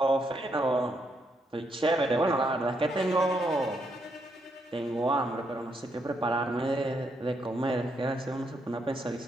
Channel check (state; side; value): normal; both; correlation 0.77